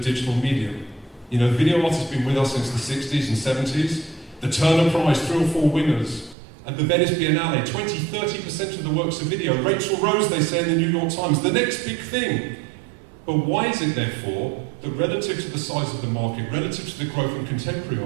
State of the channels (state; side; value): drops out; left; at 6.4 s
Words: medium. You know, video art has been with us since the 60s and 70s. The Turner Prize, 3 or 4 winners. At the Venice Biennale, 20-30% of the works are video. Rachel Rose, they say in the New York Times, the next big thing. But why is it, therefore, that relative to the size of the market, relative to the growth in contemporary